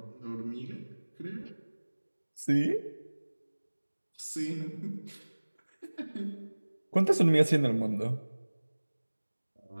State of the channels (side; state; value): both; inverted; correlation -1.00